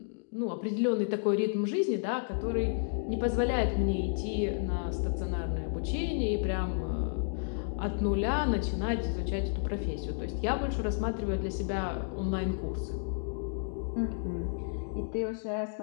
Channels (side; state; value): right; silent; digital silence